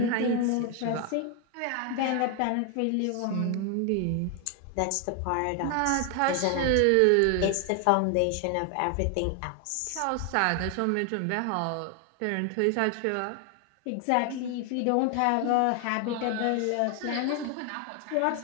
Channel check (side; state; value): both; different; correlation 0.00